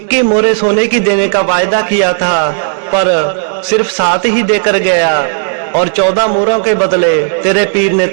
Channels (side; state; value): left; silent; 74 dB below the other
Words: मोहरें सोने की देने का वायदा किया था पर सिर्फ 7 ही देकर गया और 14 मोहरों के बदले तेरे पीर ने